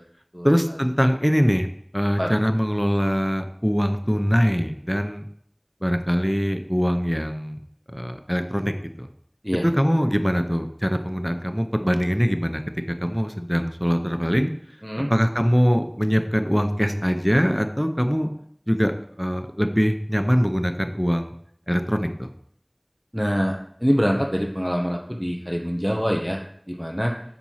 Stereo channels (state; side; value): identical; both; correlation 1.00